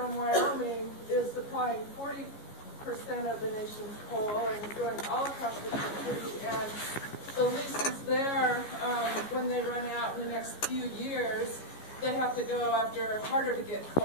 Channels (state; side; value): late; right; 14 ms